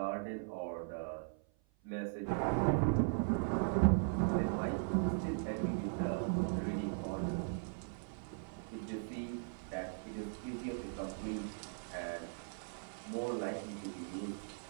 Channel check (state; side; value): silent; left; 52 dB below the other